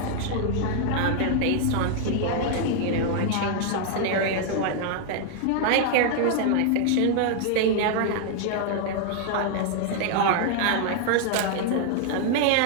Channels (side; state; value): both; different; correlation 0.00